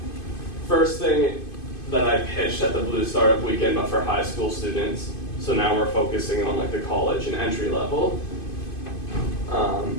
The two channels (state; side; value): late; right; 2.5 ms